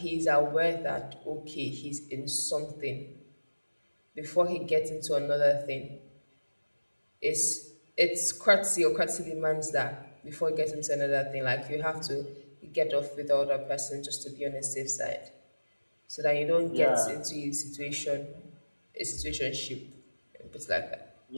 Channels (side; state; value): both; inverted; correlation -1.00